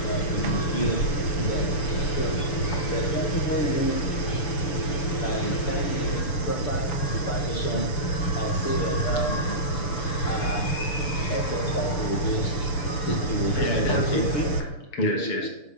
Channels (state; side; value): late; right; 6.9 ms